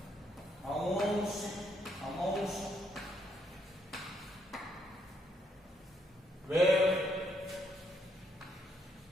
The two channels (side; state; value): both; normal; correlation 0.74